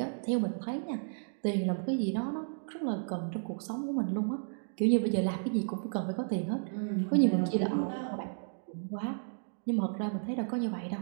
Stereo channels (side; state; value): left; silent; digital silence